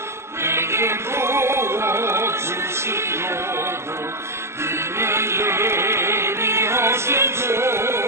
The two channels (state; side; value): late; left; 0.13 ms